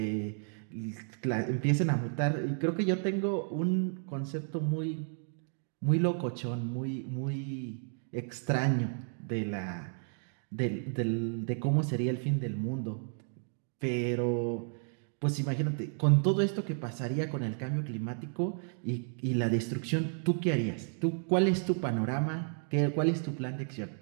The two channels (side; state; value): left; silent; 56 dB below the other